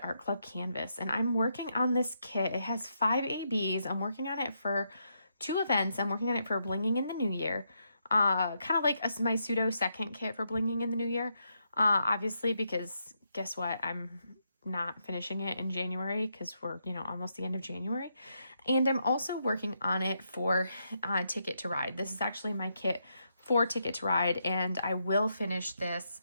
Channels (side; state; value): both; inverted; correlation -0.80